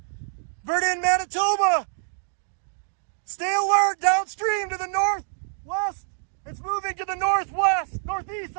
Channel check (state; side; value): silent; left; 61 dB below the other